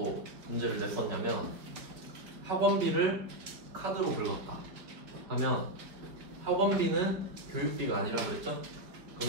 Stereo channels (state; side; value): late; left; 4.9 ms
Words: 문제를 냈었냐면 학원비를 카드로 긁었다 하면 학원비는 교육비가 아니라 그랬죠?